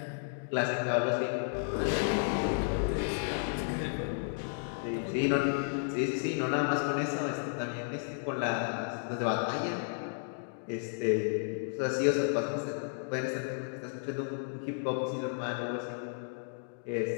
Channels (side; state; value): right; silent; digital silence